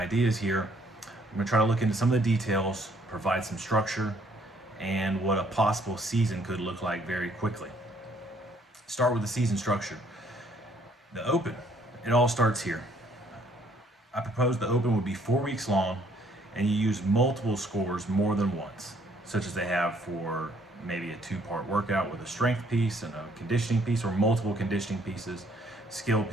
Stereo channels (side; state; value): both; normal; correlation 0.64